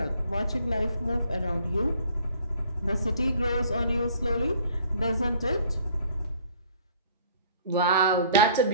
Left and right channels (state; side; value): inverted; both; correlation -0.56